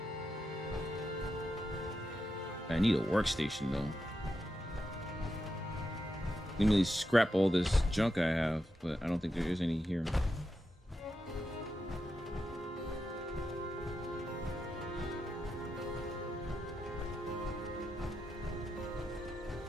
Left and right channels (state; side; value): normal; both; correlation 0.87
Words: I need a workstation though. Let me scrap all this junk I have, but I don't think there is any here.